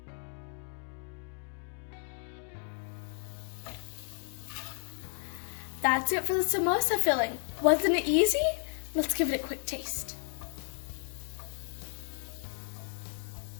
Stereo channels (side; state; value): right; silent; 56 dB below the other